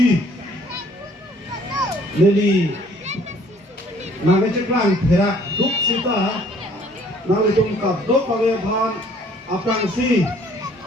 leli naga ceklang perak duk sita lalu itu kado kawe bhan aprang si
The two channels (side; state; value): both; normal; correlation 0.58